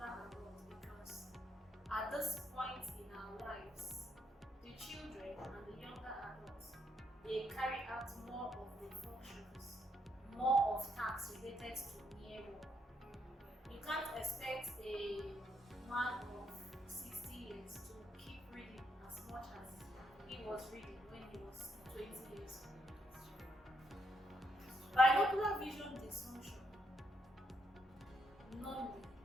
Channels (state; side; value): normal; both; correlation 0.76